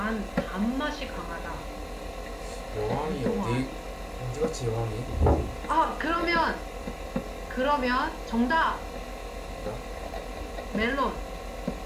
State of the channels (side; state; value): both; identical; correlation 1.00